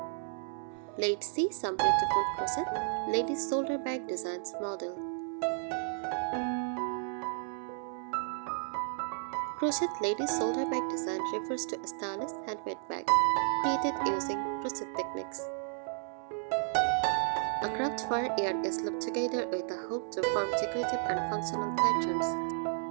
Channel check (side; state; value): left; silent; 56 dB below the other